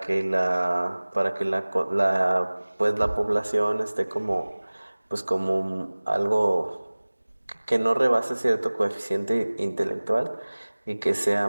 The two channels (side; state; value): both; inverted; correlation -1.00